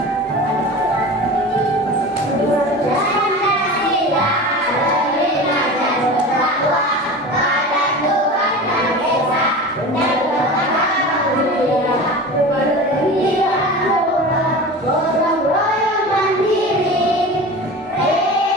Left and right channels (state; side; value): normal; both; correlation 0.32